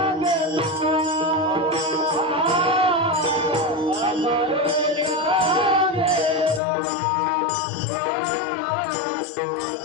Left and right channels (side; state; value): right; drops out; at 6.6 s